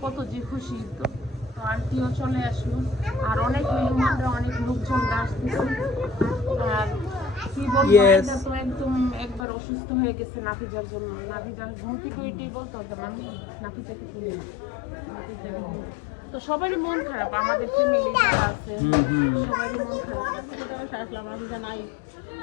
কত যে খুশি হতো। তো আন্টিও চলে আসলো। আর অনেক মেহমানরা, অনেক লোকজনরা আসতেছে। আর কি বলবো, এটা তো একদম একবার অসুস্থ হয়ে গেছে নাফিজার জন্য। নাফিজার ঘুম থেকে উঠেই বলতো যে আমি নাফিজাকে তুলি না। তো সবারই মন খারাপ, আমাদের ফ্যামিলি যারা আছে সবারই মন খারাপ। আসলাম নাফিজা নাই।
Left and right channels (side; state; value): right; drops out; at 9.5 s